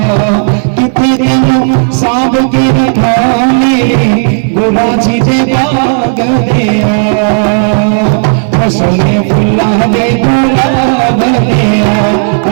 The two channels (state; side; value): silent; left; digital silence